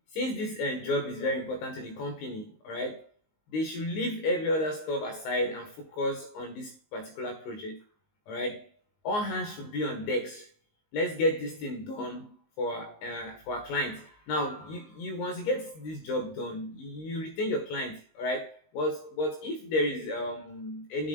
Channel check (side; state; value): right; late; 19 ms